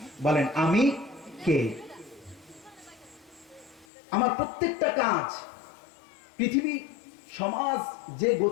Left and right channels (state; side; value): drops out; right; at 3.9 s